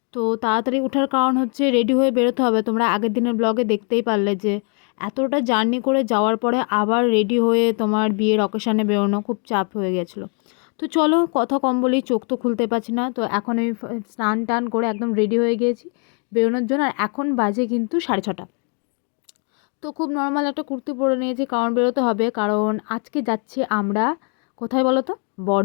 তো তাড়াতাড়ি ওঠার কারণ হচ্ছে রেডি হয়ে বেরোতে হবে। তোমরা আগের দিনের ব্লগে দেখতেই পারলে যে এতটা জার্নি করে যাওয়ার পরে আবার রেডি হয়ে তোমার বিয়ের অকেশানে বেরোনো খুব চাপ হয়ে গেছিলো। তো চলো, কথা কম বলি, চোখ তো খুলতে পারছি না। তো এখন আমি স্নান টান করে একদম রেডি হয়ে গিয়েছি বেরোনোর জন্য। আর এখন বাজে কিন্তু 6:30। তো খুব নর্মাল একটা কুর্তি পরে নিয়েছি, কারণ বেরোতে হবে। কারণ আজকে যাচ্ছি আমরা কোথায় বলো তো?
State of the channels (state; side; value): quieter; right; 38.9 dB